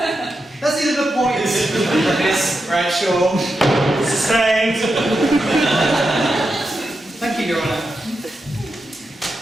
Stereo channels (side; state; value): both; normal; correlation 0.87